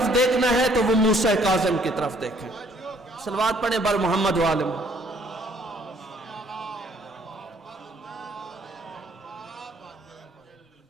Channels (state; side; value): normal; both; correlation 0.62